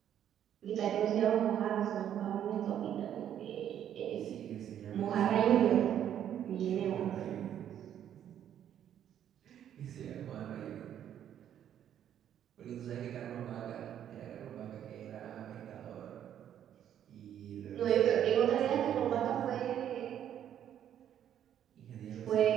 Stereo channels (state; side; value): quieter; left; 10.1 dB